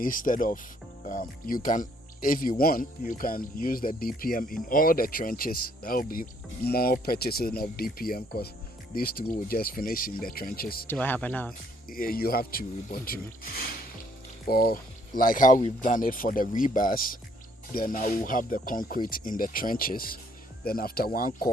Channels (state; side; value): normal; both; correlation 0.66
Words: of, you can, if you want, you can use the DPM in all the trenches. That will be more purchasing of DPM because these two will just finish in the trenches. Do I have enough? You have to report to, or like how we've done it for the rebars. Then I will have the concrete in the trenches. Then after one